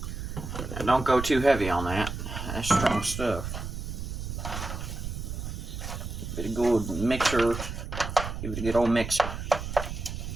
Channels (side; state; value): right; noise; rumble, 6 dB below the sound